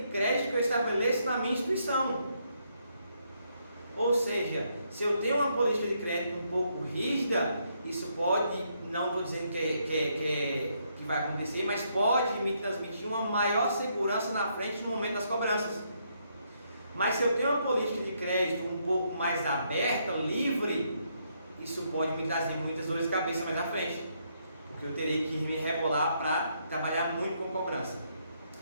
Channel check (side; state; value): both; inverted; correlation -0.75